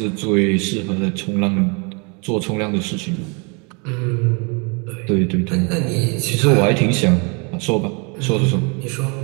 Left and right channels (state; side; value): quieter; left; 32.8 dB